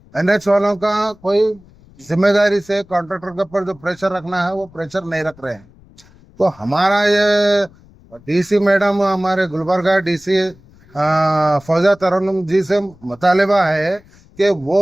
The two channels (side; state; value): left; noise; rumble, 27 dB below the sound